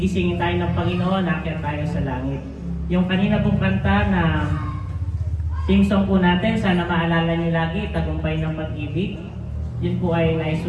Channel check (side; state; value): both; identical; correlation 1.00